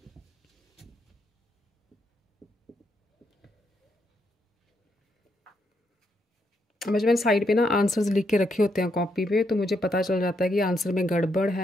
जब मैंने साइड पे ना आंसर्स लिख के रखे होते हैं कॉपी पे, तो मुझे पता चल जाता है कि आंसर में गड़बड़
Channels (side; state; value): both; normal; correlation 0.78